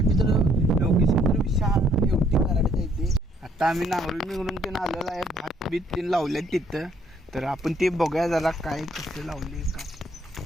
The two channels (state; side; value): normal; both; correlation 0.65